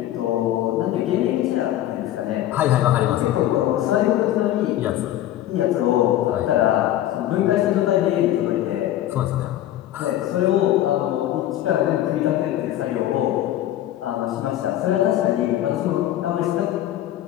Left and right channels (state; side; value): quieter; right; 13.0 dB